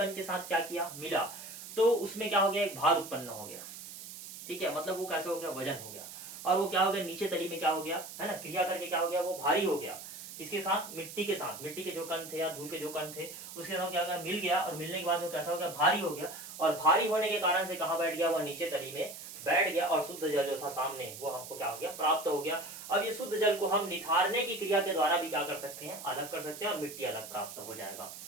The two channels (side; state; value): right; noise; hiss, 12 dB below the sound